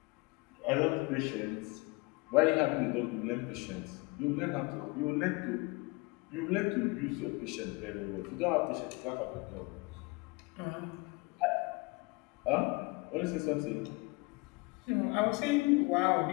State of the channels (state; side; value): quieter; right; 26.8 dB